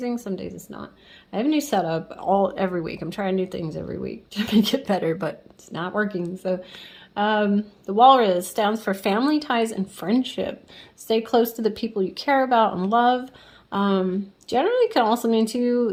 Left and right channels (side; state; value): both; identical; correlation 1.00